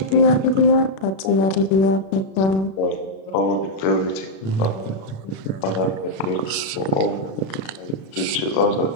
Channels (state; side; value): late; right; 36 ms